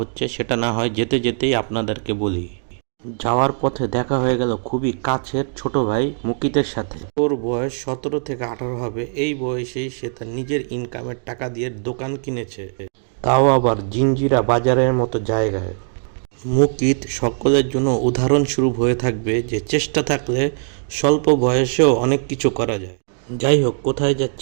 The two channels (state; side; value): silent; left; digital silence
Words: সেটা না হয় যেতে যেতেই আপনাদেরকে বলি। যাওয়ার পথে দেখা হয়ে গেল খুবই কাছের ছোট ভাই মুকিতের সাথে। ওর বয়স 17 থেকে 18 হবে। এই বয়সেই সে তার নিজের ইনকামের টাকা দিয়ে দোকান কিনেছে, তাও আবার জিঞ্জিরা বাজারের মতো জায়গায়। মুকিত সকলের জন্য উদাহরণস্বরূপ হয়ে থাকবে যে চেষ্টা থাকলে স্বল্প বয়সেও অনেক কিছু করা যায়। যাই হোক, কোথায়